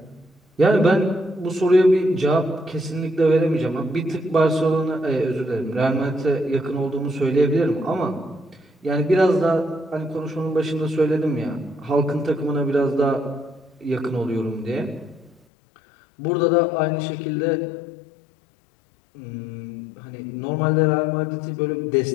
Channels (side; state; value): right; drops out; at 15.4 s